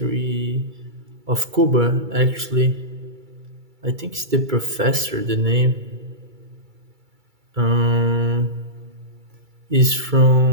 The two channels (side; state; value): left; late; 2.3 ms